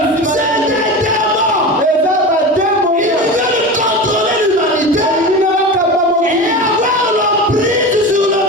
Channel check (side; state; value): both; normal; correlation 0.28